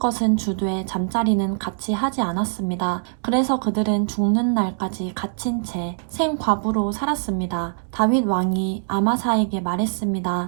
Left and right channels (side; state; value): left; silent; digital silence